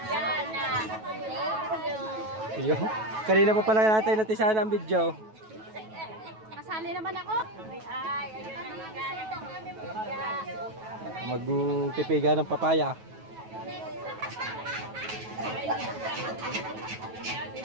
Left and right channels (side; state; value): left; late; 9.2 ms